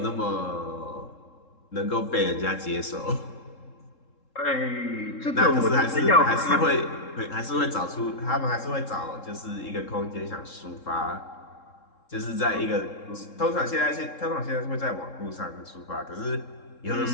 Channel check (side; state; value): right; late; 3.7 ms